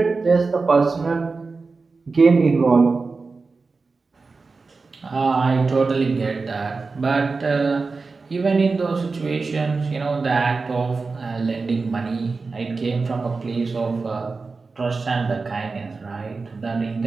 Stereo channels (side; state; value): left; quieter; 4.2 dB